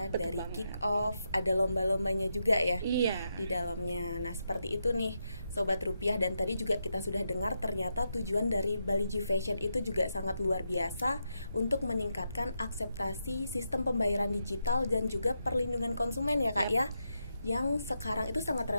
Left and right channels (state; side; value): inverted; both; correlation -0.84